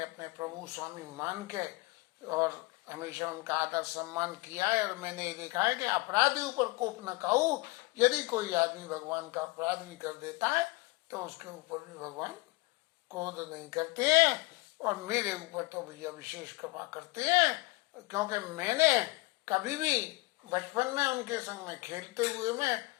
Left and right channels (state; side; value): quieter; right; 24.4 dB